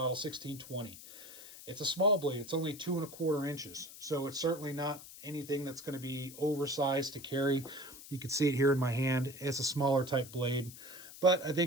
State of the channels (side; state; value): left; noise; hiss, 15 dB below the sound